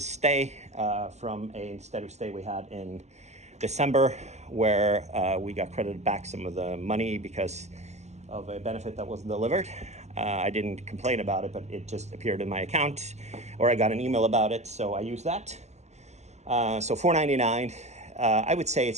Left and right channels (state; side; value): late; left; 0.33 ms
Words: stay from a steady stay we had in December, where we got credited back some of the money because of a benefit that wasn't delivered. I didn't complain about it, but it just appeared in my account, or I got an email about it, so I used that. So $499. I would say